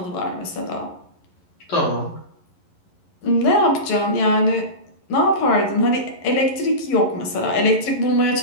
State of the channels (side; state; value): right; late; 11 ms